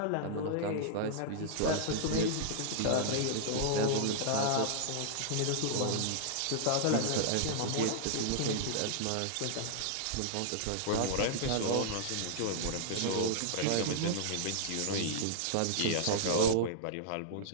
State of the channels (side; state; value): both; different; correlation -0.01